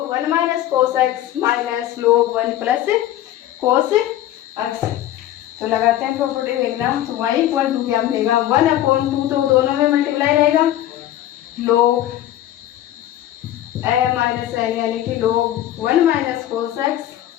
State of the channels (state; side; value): quieter; right; 13.0 dB